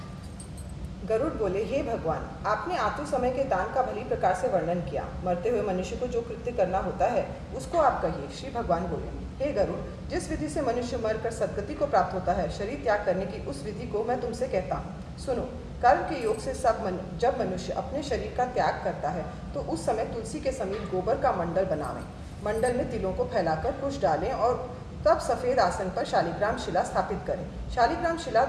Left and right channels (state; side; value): identical; both; correlation 1.00